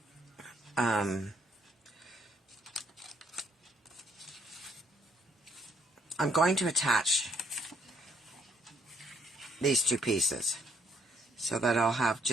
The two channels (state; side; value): normal; both; correlation 0.69